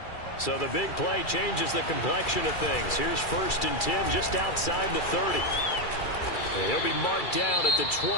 So the big play changes the complexion of things. Here's 1st and 10 just outside the 30. And he'll be marked down at the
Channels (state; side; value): late; right; 2.4 ms